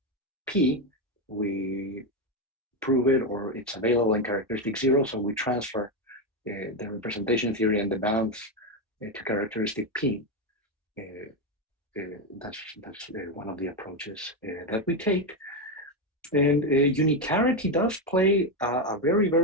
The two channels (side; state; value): both; normal; correlation 0.09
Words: P, we prove it, or it's available in characteristic 0, so we transfer the representation theory and the bounds to characteristic P. That's one of the approaches that we take. And unitarity does play a very,